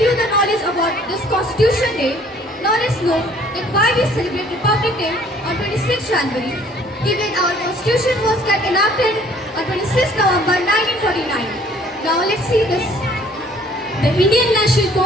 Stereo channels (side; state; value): both; normal; correlation 0.57